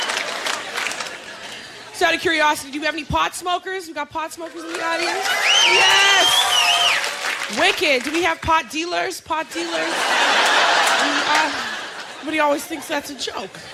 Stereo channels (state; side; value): identical; both; correlation 1.00